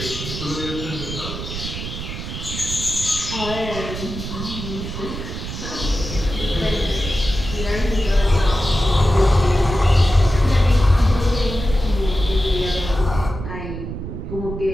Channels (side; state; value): right; noise; rumble, 7 dB below the sound